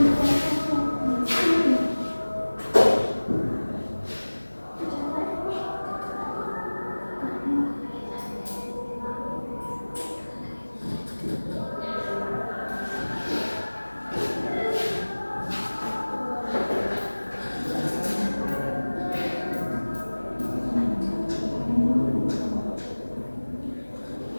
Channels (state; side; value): inverted; both; correlation -1.00